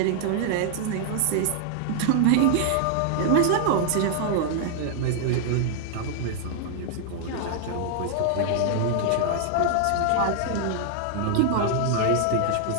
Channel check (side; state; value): both; different; correlation 0.00